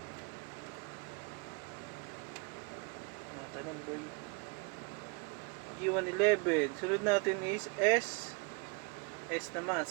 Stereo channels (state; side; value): quieter; left; 31.0 dB